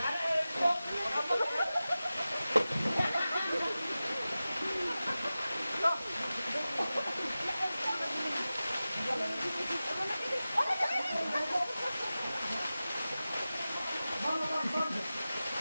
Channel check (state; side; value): inverted; both; correlation -0.95